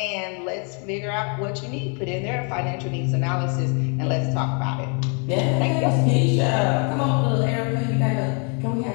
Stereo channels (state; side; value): quieter; right; 38.4 dB